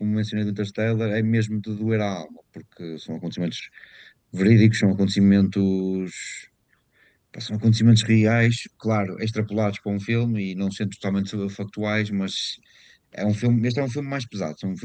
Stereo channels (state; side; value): identical; both; correlation 1.00